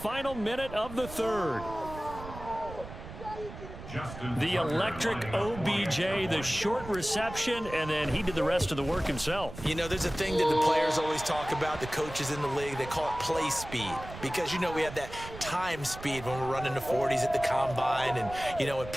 minute of the third. The electric OBJ, the short reception, and then he did the rest of the work himself. You know, there's a thing that the players always talk about, the coaches in the league, they call it play speed. Because, you know, we have that time speed when we're running the 40s at the combine and, you know, at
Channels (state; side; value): noise; right; rumble, 12 dB below the sound